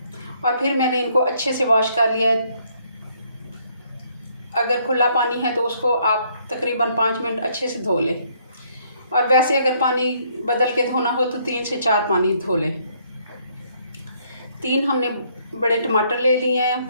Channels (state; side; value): inverted; both; correlation -0.68